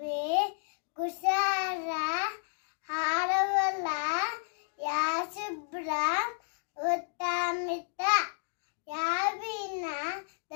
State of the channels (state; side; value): silent; right; digital silence